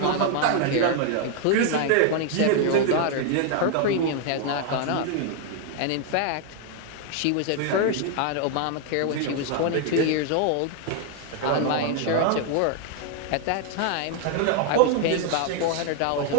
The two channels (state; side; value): different; both; correlation 0.00